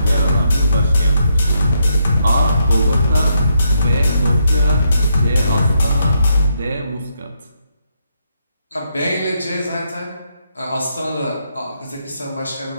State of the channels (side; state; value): both; inverted; correlation -0.79